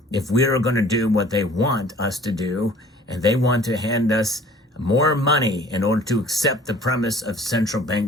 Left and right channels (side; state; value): both; normal; correlation 0.51